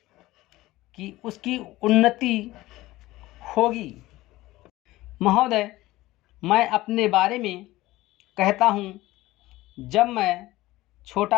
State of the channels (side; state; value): right; quieter; 17.8 dB